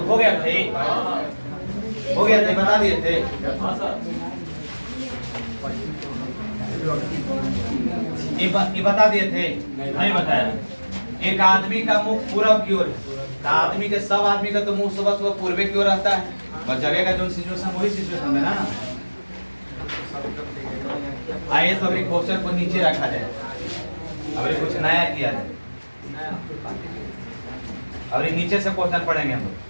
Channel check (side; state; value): both; inverted; correlation -1.00